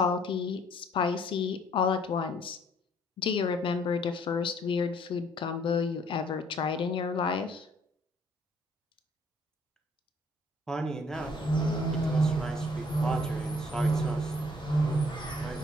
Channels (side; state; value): both; normal; correlation 0.61